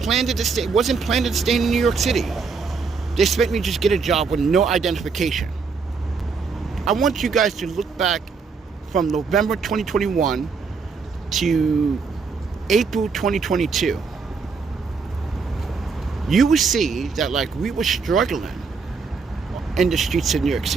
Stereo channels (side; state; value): left; quieter; 5.0 dB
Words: to stay, wasn't planned to stay in New York City. They expect me to just get a job with no identification. I want you guys to look back from November 2021 to April 2022. You will see that like we were struggling in the streets of New York